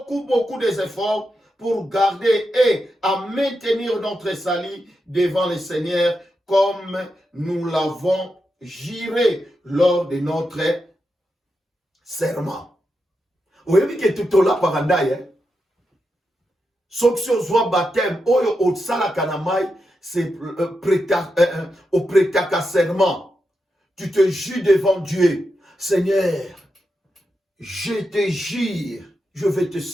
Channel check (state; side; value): normal; both; correlation 0.87